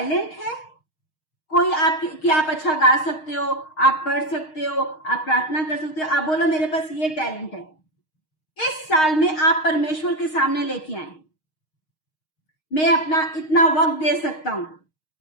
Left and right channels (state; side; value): late; right; 6.4 ms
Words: है, कोई कि आप अच्छा गा सकते हो, आप पढ़ सकते हो, आप प्रार्थना कर सकते हो, आप बोलो मेरे पास ये टैलेंट है, इस साल में आप परमेश्वर के सामने लेके आए। मैं अपना इतना वक्त दे सकता हूं,